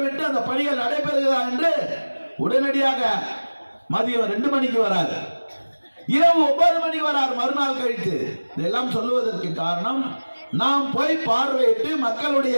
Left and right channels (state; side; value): inverted; both; correlation -1.00